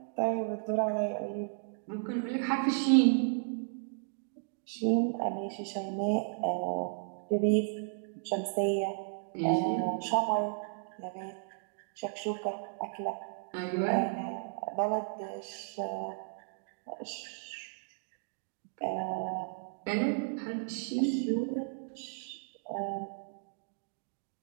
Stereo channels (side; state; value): left; silent; digital silence